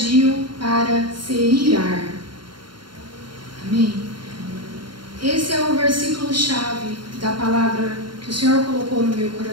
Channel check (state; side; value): late; left; 0.72 ms